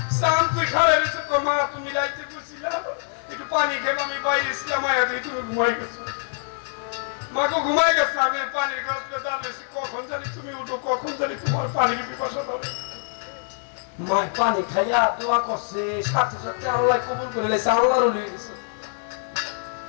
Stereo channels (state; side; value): silent; right; digital silence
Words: চান তুই খারাপ দিচ্ছে, মা তুমি রাইতে করছিলা একটু পানি খেয়ে আমি বাইরে ছিলাম, মায়ের দিয়ে তুমি ঘুমাই গেছো, মাকে ঘুমাই গেছে, আমি পানির গাছ দাঁড়িয়েছি, কখন জানি তুমি উঠো, কখন জানি তোমার পানির পিপাসা ধরে। মায়ের পানি খাইয়া দোয়া করছে, সাথে সাথে আল্লাহ কবুল করে লেছে, আল্লাহর ওলি হয়ে গেছে।